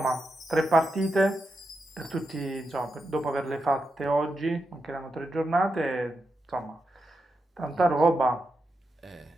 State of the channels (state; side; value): normal; both; correlation 0.86